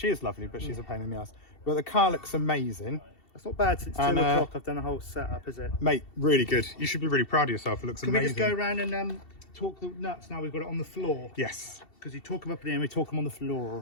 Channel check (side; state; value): right; late; 2.7 ms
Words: is lovely, but she's a pain in the ass. But the car looks amazing. That's not bad since 2 And, o'clock. I've done a whole setup, is it? Mate, really good. You should be really proud of yourself. It looks Can amazing. we just go around and talk the nuts now? We've got it on the floor. Yes, Because you talk them up in the air, we talk them on the